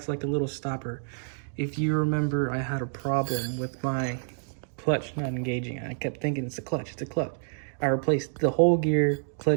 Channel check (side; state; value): left; silent; digital silence